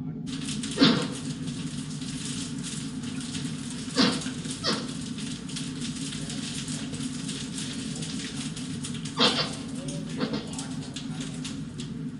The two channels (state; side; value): identical; both; correlation 1.00